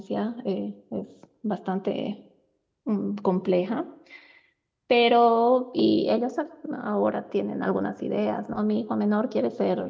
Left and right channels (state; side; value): identical; both; correlation 1.00